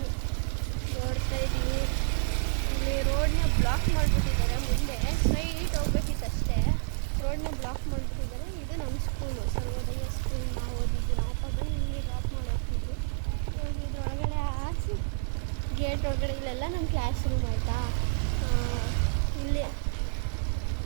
ನೋಡ್ತಾ ಇದ್ದೀನಿ. ಇಲ್ಲಿ ರೋಡ್ನ ಬ್ಲಾಕ್ ಮಾಡಿಬಿಟ್ಟಿದ್ದಾರೆ. ಮುಂದೆ ಸ್ಟ್ರೈಟ್ ಹೋಗ್ಬೇಕಿತ್ತು ಅಷ್ಟೇ. ರೋಡ್ನ ಬ್ಲಾಕ್ ಮಾಡಿಬಿಟ್ಟಿದ್ದಾರೆ. ಇದು ನಮ್ಮ ಸ್ಕೂಲು, ಸರ್ವೋದಯ ಸ್ಕೂಲ್. ನಾವು ಓದಿದ್ದು, ನಾವಪ್ಪ ಬಂದು ಇಲ್ಲಿ ಡ್ರಾಪ್ ಮಾಡಿ ಹೋಗ್ತಿದ್ವಿ. ಇದು ಒಳಗಡೆ ಹಾಕಿ ಗೇಟ್ ಒಳಗಡೆ ಇಲ್ಲೆಲ್ಲ ನಮ್ಮ ಕ್ಲಾಸ್ ರೂಮ್ ಆಯಿತಾ.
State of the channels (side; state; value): left; silent; digital silence